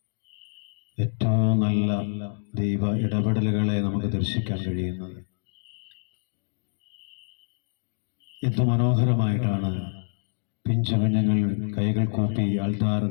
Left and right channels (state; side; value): silent; right; 61 dB below the other